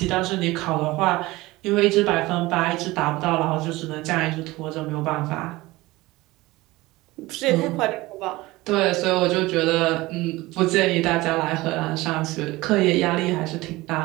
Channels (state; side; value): quieter; left; 19.9 dB